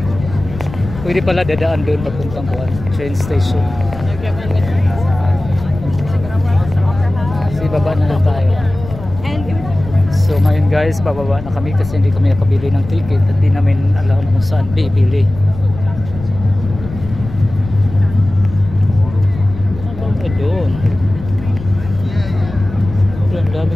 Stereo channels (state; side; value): noise; left; rumble, 12 dB below the sound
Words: Pwede pala dadaan doon papuntang kuan, train station. Kasi baba na lang tayo. So ngayon guys, bababa na kami kasi hindi kami nakabili ng ticket at di namin alam kung saan bibili. Doon. Ang dami